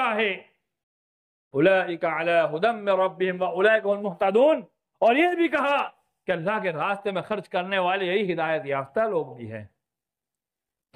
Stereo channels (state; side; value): identical; both; correlation 1.00